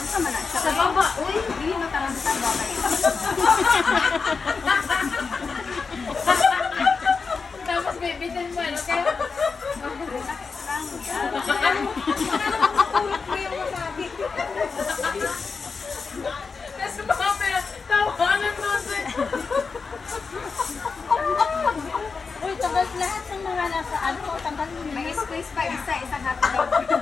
man na siya. Sa baba, uy. Hindi mo tanong sa baba. Tapos bibitin mo, ano kaya? Relax lang. Ulot mo yung masabi. Tapos mga tawanan mo sa... Uy, tagal lahat ng mga nasa ano, tanggalin mo. May space pa isa, isang hotdog.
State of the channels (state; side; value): quieter; right; 4.9 dB